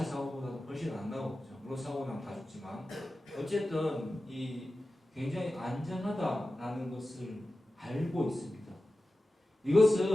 사고보다도 훨씬 안 나오죠. 물론 사고 나면 다 죽지만 어쨌든 이 굉장히 안전하다라는 것을 알고 있습니다.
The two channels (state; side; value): normal; both; correlation 0.94